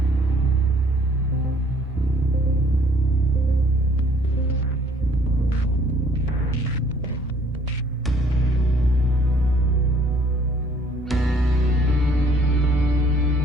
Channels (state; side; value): normal; both; correlation 0.60